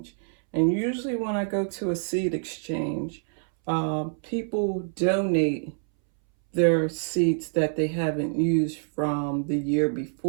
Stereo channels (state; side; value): silent; left; 61 dB below the other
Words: And usually when I go to a seed exchange, people donate their seeds that they haven't used from the year